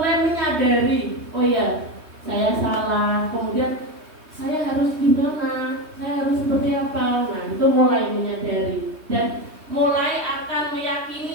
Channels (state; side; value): late; left; 3.2 ms